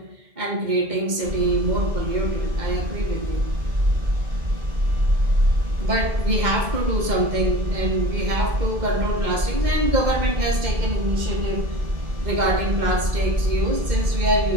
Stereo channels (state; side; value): late; left; 2.1 ms